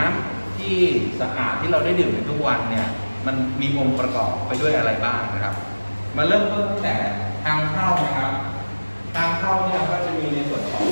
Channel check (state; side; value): inverted; both; correlation -1.00